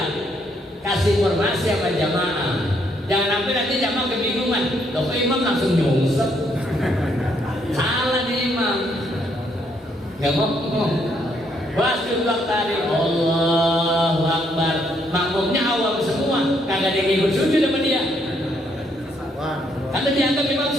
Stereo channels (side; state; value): both; normal; correlation 0.72